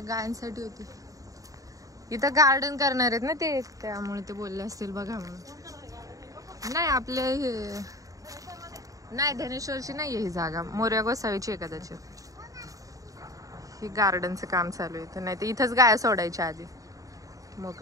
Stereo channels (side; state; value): left; late; 0.16 ms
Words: गायांसाठी होती. इथं गार्डन करणार आहेत ना ते, त्यामुळे ते बोलले असतील बघा म्हणून. नाही आपले हे नाही धनेश्वरची नाहीये ही जागा, मोर्या गोसावीची आहे कदाचित. ही गार्डनचं काम चालू आहे, तर नाही तर इथंच गाया सोडायच्या आधी